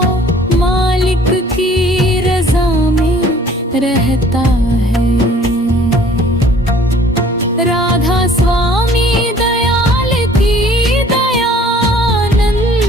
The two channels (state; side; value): normal; both; correlation 0.54